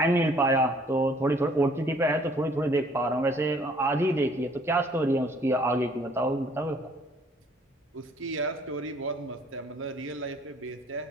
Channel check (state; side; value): normal; both; correlation 0.59